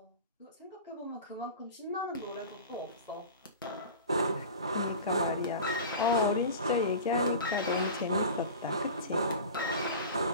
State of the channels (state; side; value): inverted; both; correlation -0.34